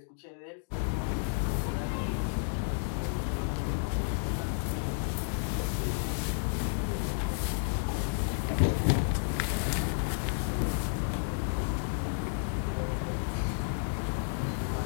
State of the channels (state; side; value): silent; right; digital silence